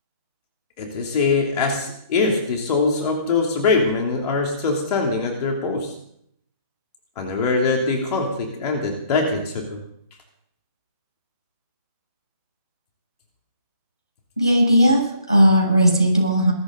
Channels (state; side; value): inverted; both; correlation -0.58